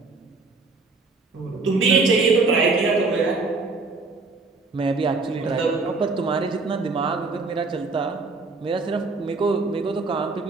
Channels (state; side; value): quieter; left; 3.9 dB